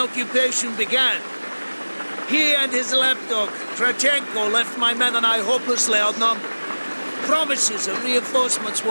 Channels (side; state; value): both; inverted; correlation -1.00